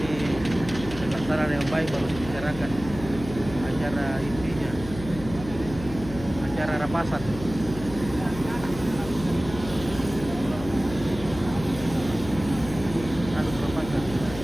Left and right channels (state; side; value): noise; left; hum, 11 dB below the sound